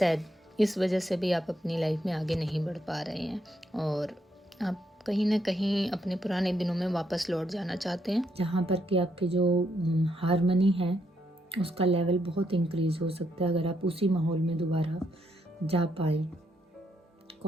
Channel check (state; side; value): normal; both; correlation 0.77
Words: इस वजह से भी आप अपनी लाइफ में आगे नहीं बढ़ पा रहे हैं और आप कहीं ना कहीं अपने पुराने दिनों में वापस लौट जाना चाहते हैं, जहाँ पर कि आपकी जो हार्मनी है उसका लेवल बहुत इंक्रीज हो सकता है अगर आप उसी माहौल में दोबारा जा पाए।